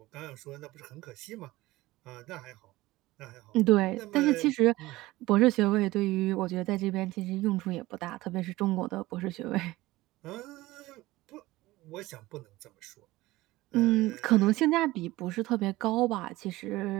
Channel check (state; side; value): quieter; left; 18.5 dB